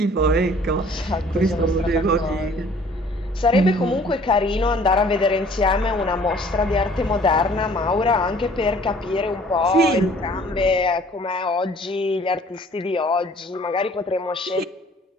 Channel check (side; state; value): both; normal; correlation 0.54